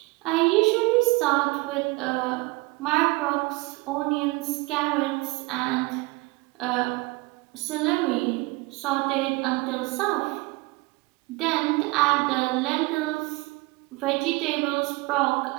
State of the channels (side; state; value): left; quieter; 24.1 dB